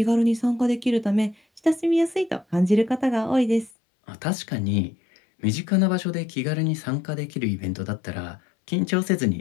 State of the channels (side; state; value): right; drops out; at 3.7 s